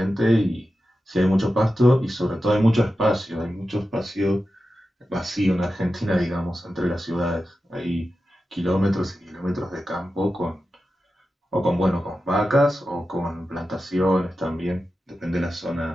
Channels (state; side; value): normal; both; correlation 0.92